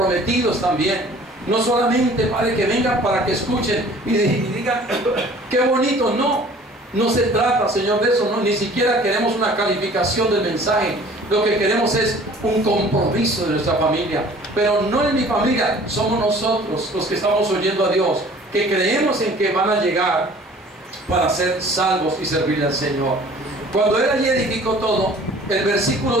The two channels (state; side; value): normal; both; correlation 0.50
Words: también. No solamente, Padre, que vengan para que escuchen y digan, qué bonito, no. No se trata, Señor, de eso, no, ni siquiera queremos una calificación del mensaje. Lo que queremos es un compromiso de nuestra familia. Pero no en mi familia, somos nosotros los que estamos oyendo a Dios, que creemos en que van a llegar para ser salvos y servirle al Señor. Cuando Él allí edificó todo, el